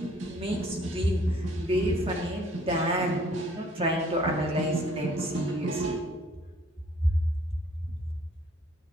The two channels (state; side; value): normal; both; correlation 0.59